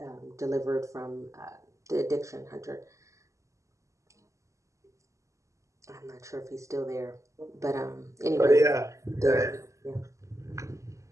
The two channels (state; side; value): late; left; 0.15 ms